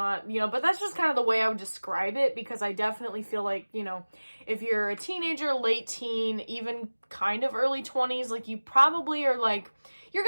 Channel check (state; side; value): inverted; both; correlation -1.00